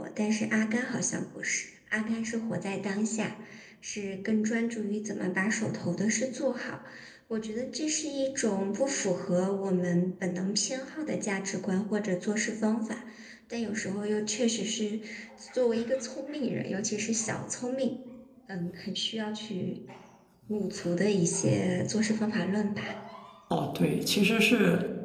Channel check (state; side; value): identical; both; correlation 1.00